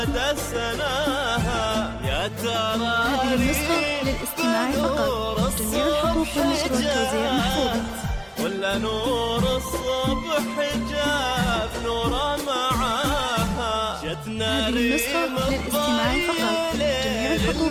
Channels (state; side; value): identical; both; correlation 1.00